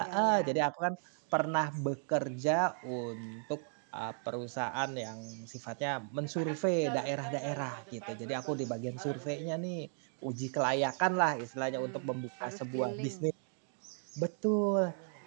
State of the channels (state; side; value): silent; left; 54 dB below the other